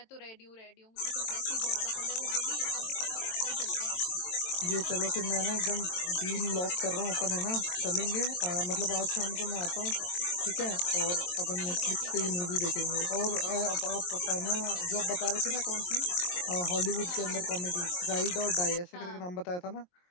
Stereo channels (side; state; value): right; late; 22 ms